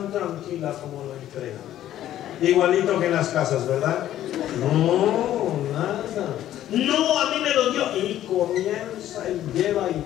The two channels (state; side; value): quieter; right; 12.5 dB